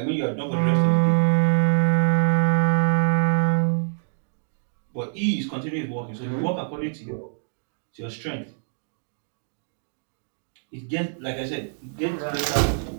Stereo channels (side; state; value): left; silent; digital silence